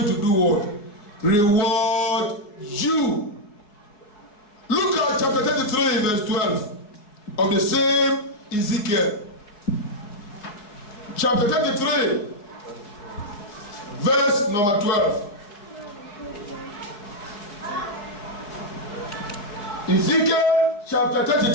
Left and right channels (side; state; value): right; late; 4.7 ms